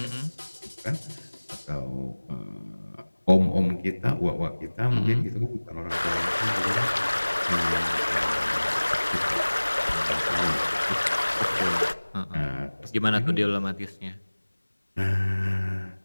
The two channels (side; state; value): both; inverted; correlation -1.00